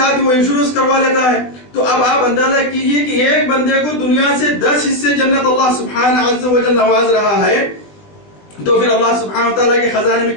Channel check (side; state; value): right; late; 20 ms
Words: وہ انشورنس کروا لیتا ہے. تو اب آپ اندازہ کیجئے کہ ایک بندے کو دنیا سے 10 حصے جنت اللہ سبحانہ عز و جل نواز رہا ہے، تو پھر اللہ سبحانہ و تعالیٰ کے خزانے میں